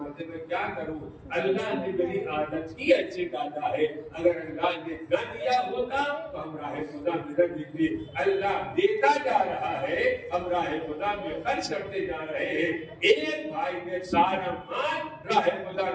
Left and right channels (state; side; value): identical; both; correlation 1.00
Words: मैं क्या करूं अल्लाह ने मेरी आदत ही अच्छी डाला है। अगर अल्लाह ने न दिया होता तो हम राह खुदा में न देते। अल्लाह देता जा रहा है हम राह खुदा में खर्च करते जा रहे हैं। एक भाई ने सारा माल राह खुदा